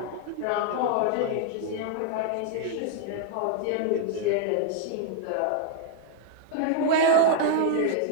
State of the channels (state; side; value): different; both; correlation -0.01